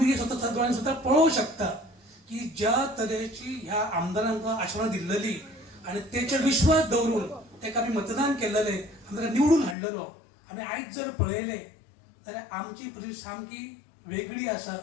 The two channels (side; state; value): right; drops out; at 9.8 s